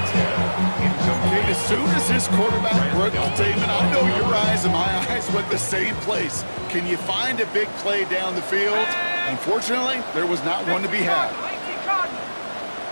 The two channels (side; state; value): both; inverted; correlation -1.00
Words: Okay, as soon as this quarterback broke the statement, I know your eyes and my eyes went the same place. Can you find a big play down the field? Unfortunately, there was not one to be had.